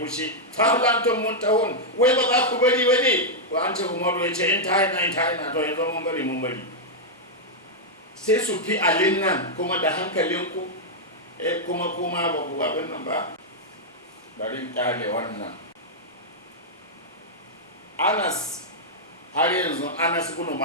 falantum muntahun wai ba za ku bari bane ko an ce Umaru ya ce in ta ina to yanzu mun bari sai su fi alin nan kuma da hankalinku kuma ba ku abin nan ba bari kyale wannan Anas har yanzu Anas ibn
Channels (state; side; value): normal; both; correlation -0.05